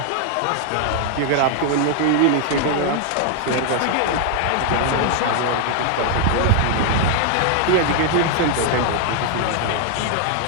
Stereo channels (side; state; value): both; different; correlation 0.00